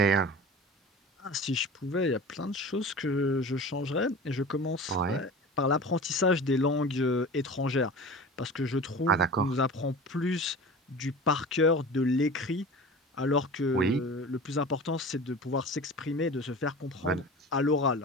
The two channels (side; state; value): both; normal; correlation 0.36